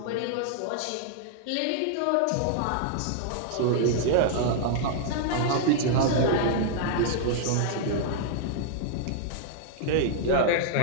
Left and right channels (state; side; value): different; both; correlation -0.01